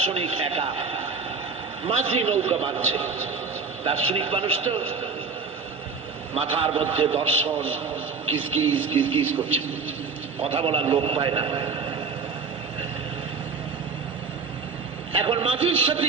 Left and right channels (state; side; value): quieter; left; 4.9 dB